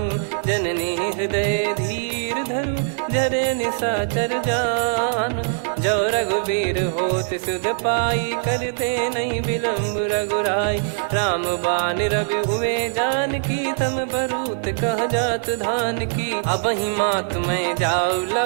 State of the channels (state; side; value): silent; left; 64 dB below the other